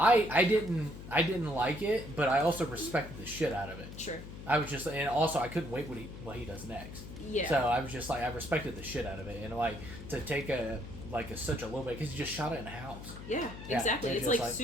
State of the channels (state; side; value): noise; left; hum, 12 dB below the sound